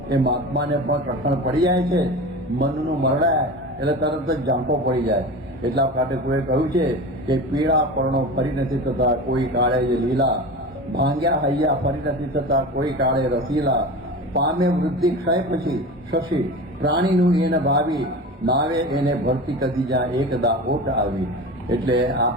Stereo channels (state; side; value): normal; both; correlation 0.31